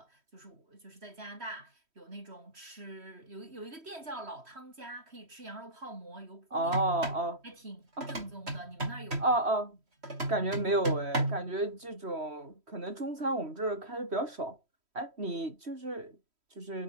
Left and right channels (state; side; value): late; left; 3.1 ms